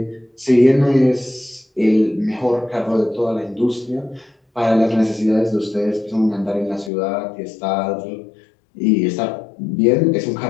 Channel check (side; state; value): right; drops out; at 6.9 s